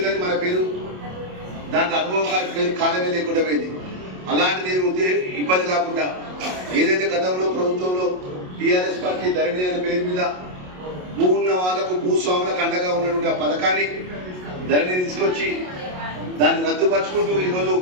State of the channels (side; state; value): left; late; 27 ms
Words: కానీ మన పేరు దాంట్లో అనుభవకారి పేరు కాలమే లేకుండా పోయింది. అలాంటిది ఇబ్బంది కాకుండా ఏదైతే గతంలో ప్రభుత్వంలో టీఆర్ఎస్ పార్టీ ధరణి అనే పేరు మీద భూ ఉన్న వాళ్ళకు భూస్వాములకు అండగా ఉన్నటువంటి ఆ పథకాన్ని ధరణి తీసుకొచ్చి దాన్ని రద్దుపరుచుకుంటూ ఈరోజు